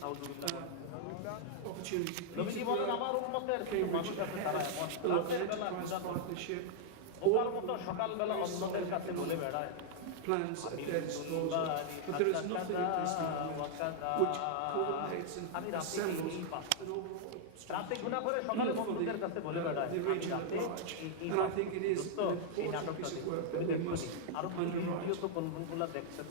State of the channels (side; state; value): both; different; correlation -0.01